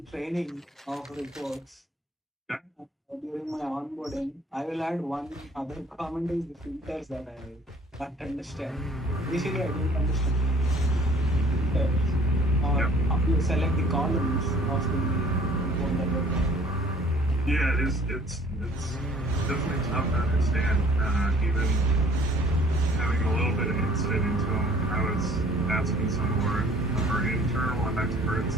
training of reports Yeah. during my onboarding. I will add one other comment is the filters that I can't understand. Initially, I didn't understand filters. Or how you select the columns of the report that you're doing. Yeah, it's definitely tough to understand. Even having a little bit of insight into them, I was asking some of our internal experts,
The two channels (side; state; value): both; normal; correlation 0.54